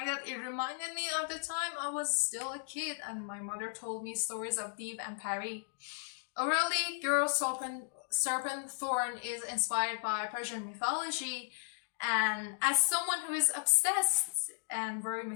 that it reminded me of the time I was still a kid and my mother told me stories of Deep and Pari. Orally, Girl, Serpent, Thorn is inspired by Persian mythology, and as someone who is obsessed and very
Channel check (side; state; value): right; silent; digital silence